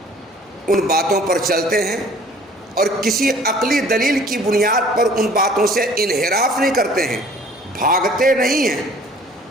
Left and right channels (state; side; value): normal; both; correlation 0.52